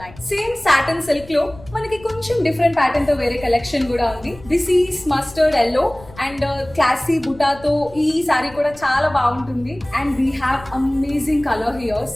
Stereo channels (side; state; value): left; noise; rumble, 20 dB below the sound